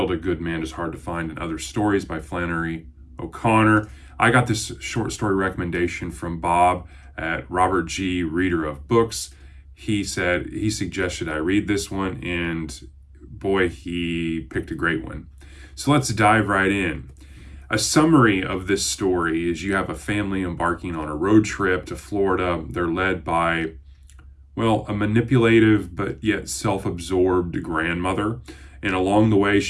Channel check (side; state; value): both; identical; correlation 1.00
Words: A Good Man is Hard to Find and Other Stories by Flannery O'Connor. I got this short story recommendation from Bob at Robert G. Reader of Books. He suggested I read this one, and boy, he picked a great one. So let's dive right in. A summary of this story is you have a family embarking on a road trip to Florida. They're led by, a manipulative but yet self-absorbed grandmother. And along the way,